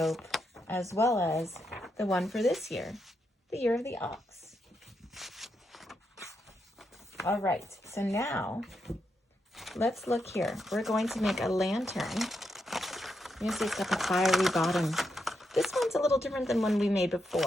as well as the one for this year, the year of the ox. All right, so now let's look here. We're going to make a lantern. You see it's got the fiery bottom. This one's a little different than one we made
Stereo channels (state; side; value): normal; both; correlation 0.83